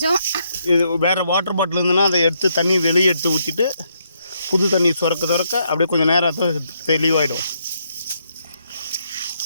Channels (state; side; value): inverted; both; correlation -0.76